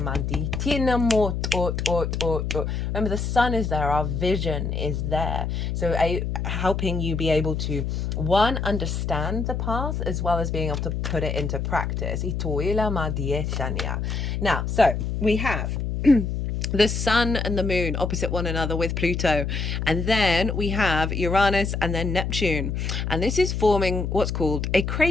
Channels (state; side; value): noise; left; hum, 2 dB below the sound